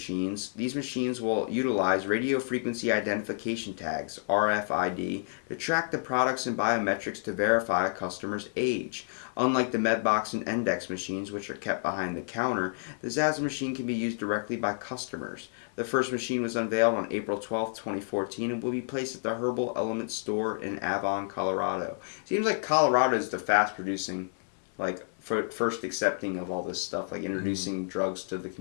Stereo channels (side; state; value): right; silent; 58 dB below the other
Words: These machines will utilize radio frequency identification tags, RFID, to track the products and biometrics to verify a customer's age. Unlike the Medbox and Index machines, which are kept behind the counter, the ZAZ machine can be used directly by customers. The first machine was unveiled on April 12, 2014, and will be placed at the Herbal Element store in Avon, Colorado. Seems like Colorado is the fast-producing, like, first accepting of all this stuff, like introducing drugs to the